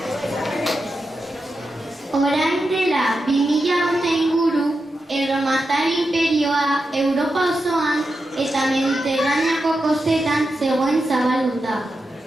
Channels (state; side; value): normal; both; correlation 0.89